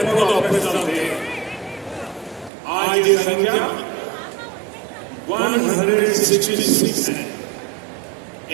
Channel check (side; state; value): left; drops out; at 2.5 s